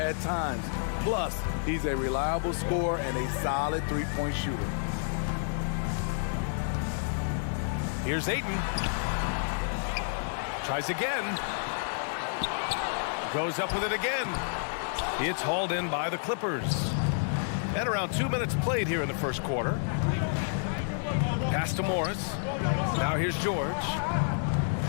times. Plus, he's a reliable scorer and a solid three-point shooter. Here's Ayton. Tries again. Goes up with it again. It's hauled in by the Clippers. And around 2 minutes played here in the first quarter. Pass to Morris. Now here's George.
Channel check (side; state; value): right; silent; 58 dB below the other